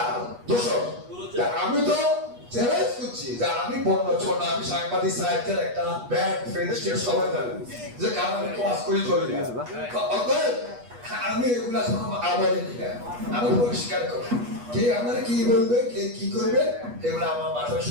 দোষক। আমি তো চ্যালেঞ্জ করছি যে আমি বন্য ছোট, আমি সাংবাদিক সাহিত্যের একটা ব্যাড ফ্রেন্ডশিপ সবাই জানেন যে কারণ আমি ক্লাস করি চলে যায়, আমি এগুলা আমার আমি পরিষ্কার করি, কে আমার কি বলবে, কে কি করবে, এগুলো আমার মাথায়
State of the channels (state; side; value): late; left; 8.3 ms